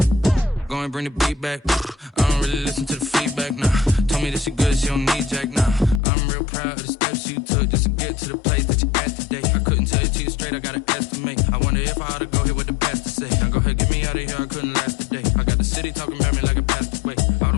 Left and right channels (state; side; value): drops out; right; at 6.0 s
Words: Go and bring the beat back. I don't really listen to the feedback, nah. Told me that she good, she don't need jack, nah. I'm real proud of the steps you took just to get to the place that you at today. I couldn't tell you to you straight, I gotta estimate. I wonder if I ought to go here with the pastor say. Now go ahead, get me out of here, I couldn't last a day. I got the city talking about me like I passed away.